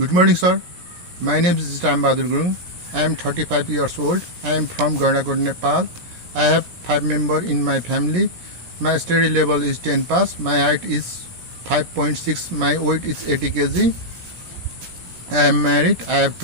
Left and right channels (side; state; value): left; late; 17 ms